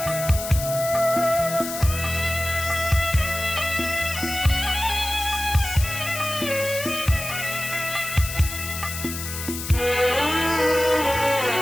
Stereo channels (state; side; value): noise; left; hiss, 7 dB below the sound